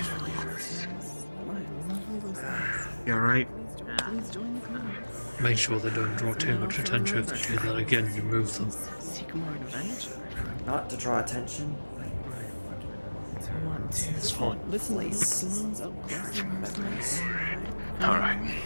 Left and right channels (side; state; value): both; inverted; correlation -1.00